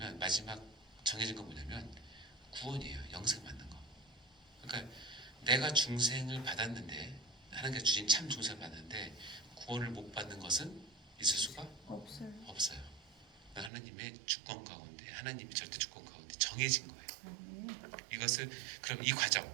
마지막 정해진 건 뭐냐면 구원이에요. 영생 받는 거. 그러니까 내가 중생을 받았는데, 하나님께서 주신 참 중생을 받았는데 구원을 못 받는 것은 있을 수가 없어요. 하나님의 주권 가운데, 하나님의 절대 주권 가운데 정해진 거예요. 이것을, 그럼 이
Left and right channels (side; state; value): left; drops out; at 13.7 s